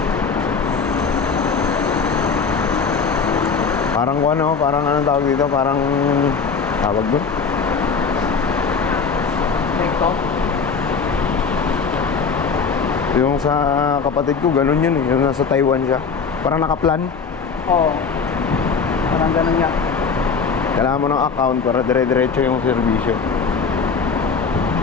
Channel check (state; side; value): quieter; right; 5.4 dB